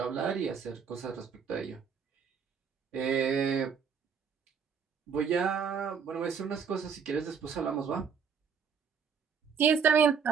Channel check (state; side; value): quieter; left; 6.7 dB